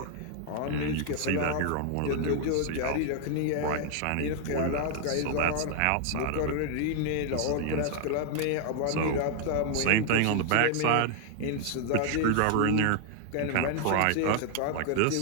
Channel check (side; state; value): both; different; correlation 0.00